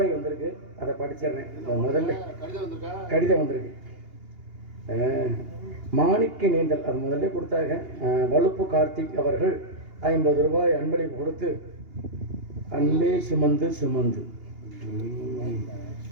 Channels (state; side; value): late; left; 2.8 ms